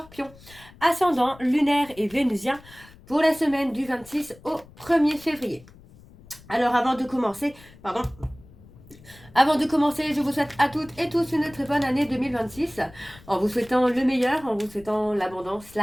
ascendant lunaire et vénusien pour la semaine du 26 au 1er février. Alors avant de commencer, je vous souhaite à toutes et tous une très bonne année 2026, en vous souhaitant le meilleur, en vous souhaitant l'abondance,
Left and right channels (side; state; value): left; noise; rumble, 23 dB below the sound